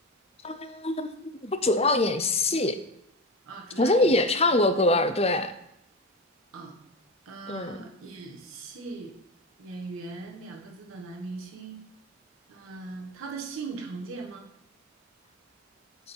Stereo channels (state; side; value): normal; both; correlation 0.21